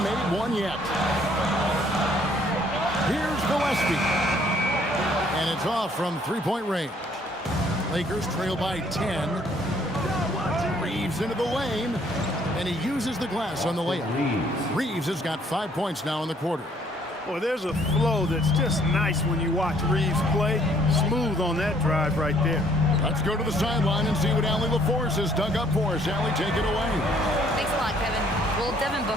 made one yet. Here's Gillespie. And it's off from three-point range. Lakers trail by 10. Reeves into the lane. And he uses the glass on the layup. Reeves has got 5 points now in the quarter. Boy, there's a flow that's just nice when you watch Reeves play. Smooth on that drive right there. Let's go to the sideline and see what Allie LaForce has dug up for us. Allie, take it away. Thanks a lot, Kevin. Well, Devin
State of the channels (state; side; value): normal; both; correlation 0.63